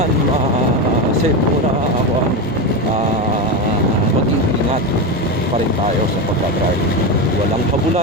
set muna ako mag-iingat pa rin tayo sa pagdadrive. Walang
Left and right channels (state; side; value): normal; both; correlation 0.16